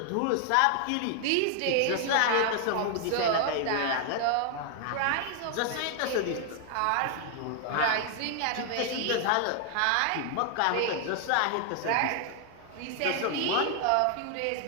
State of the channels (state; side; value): different; both; correlation 0.00